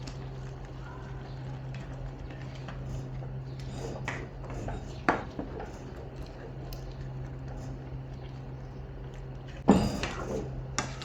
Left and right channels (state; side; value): identical; both; correlation 1.00